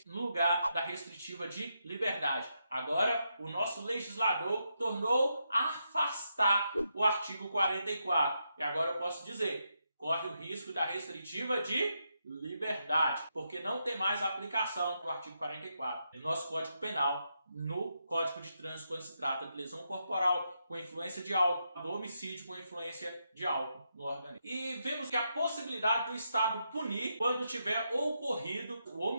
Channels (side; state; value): both; inverted; correlation -0.83